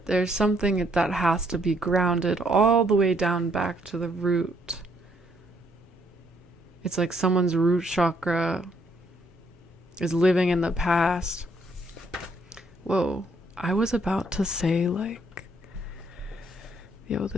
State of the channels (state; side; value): normal; both; correlation 0.69